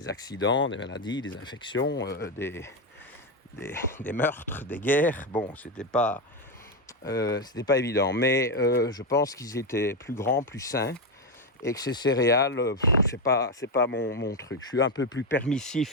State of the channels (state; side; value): normal; both; correlation 0.09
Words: accidents, des maladies, des infections, des meurtres, des guerres. Bon, c'était pas évident. Mais je pense qu'ils étaient plus grands, plus sains. Et que ces céréales, c'est pas mon truc. Je suis un peu plus